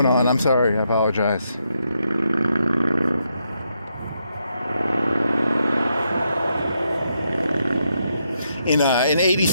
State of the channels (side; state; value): both; inverted; correlation -0.80